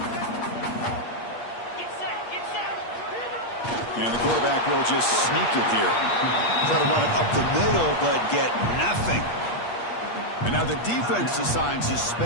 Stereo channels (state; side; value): late; right; 8.4 ms